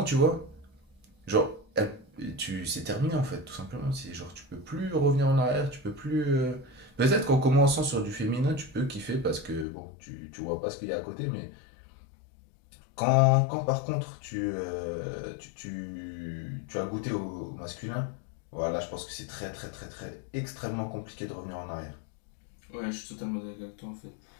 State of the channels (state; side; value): drops out; right; at 9.7 s